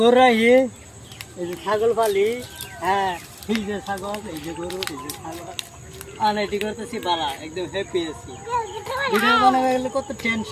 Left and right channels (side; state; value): both; identical; correlation 1.00